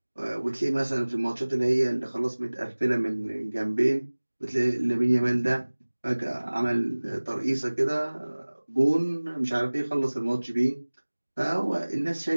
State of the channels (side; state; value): both; inverted; correlation -1.00